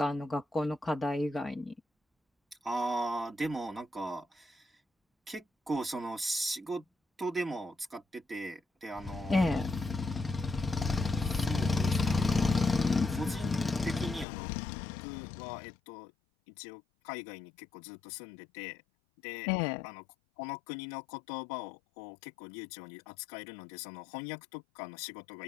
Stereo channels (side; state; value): right; drops out; at 14.2 s